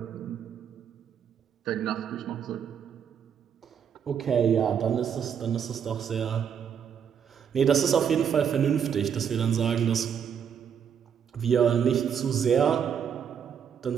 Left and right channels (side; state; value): left; quieter; 7.9 dB